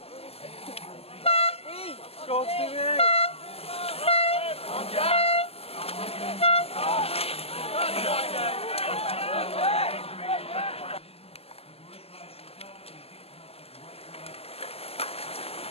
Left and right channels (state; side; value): late; right; 0.29 ms